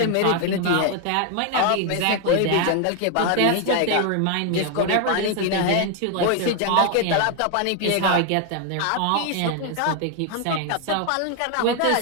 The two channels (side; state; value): both; different; correlation 0.01